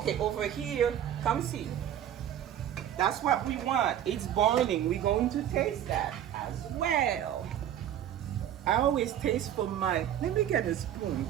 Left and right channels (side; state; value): left; quieter; 10.7 dB